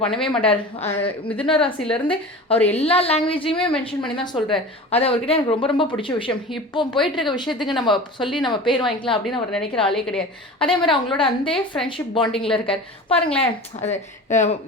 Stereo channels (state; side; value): normal; both; correlation 0.35